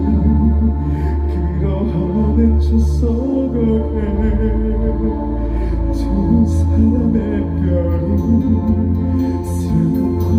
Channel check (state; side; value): identical; both; correlation 1.00